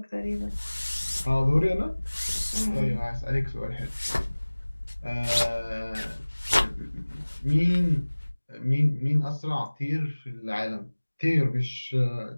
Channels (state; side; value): inverted; both; correlation -1.00